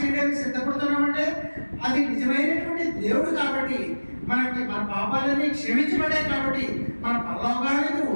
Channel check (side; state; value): both; inverted; correlation -1.00